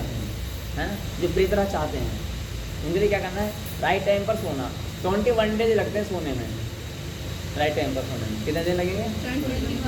हैं, है ना, जो प्रिय तरह चाहते हैं, उनके लिए क्या करना है? राइट टाइम पर सोना। 21 डेज लगते हैं सोने में, राइट टाइम पर सोने में कितने दिन लगेंगे?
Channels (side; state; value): both; identical; correlation 1.00